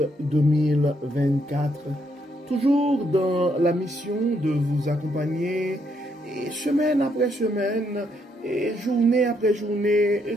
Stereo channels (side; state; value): both; normal; correlation 0.74